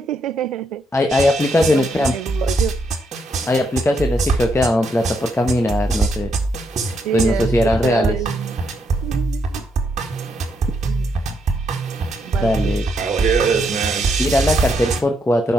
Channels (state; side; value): normal; both; correlation 0.77